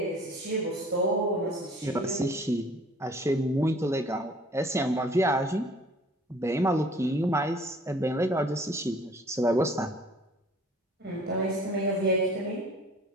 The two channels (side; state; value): both; normal; correlation 0.52